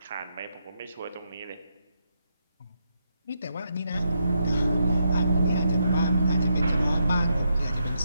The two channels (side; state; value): both; inverted; correlation -0.81